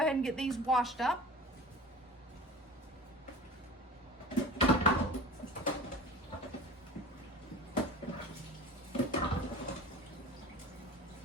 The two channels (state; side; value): normal; both; correlation 0.37